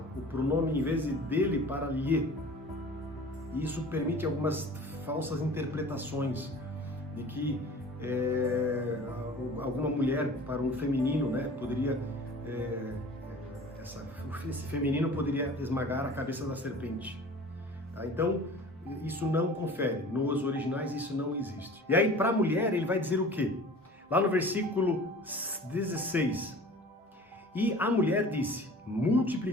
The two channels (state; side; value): normal; both; correlation 0.42